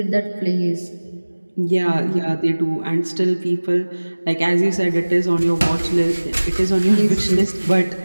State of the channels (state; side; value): inverted; both; correlation -1.00